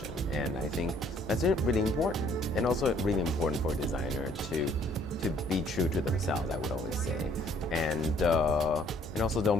And I think that's really important, and also really important for a designer to be true to themselves, I would always say. And also don't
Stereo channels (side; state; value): both; normal; correlation 0.62